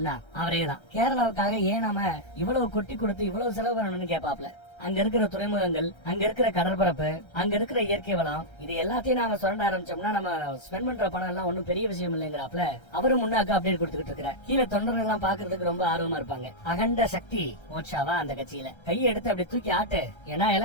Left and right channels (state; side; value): late; right; 1.3 ms